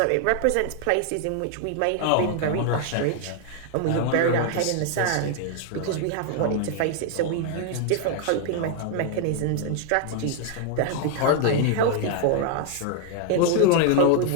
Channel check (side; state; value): both; different; correlation 0.00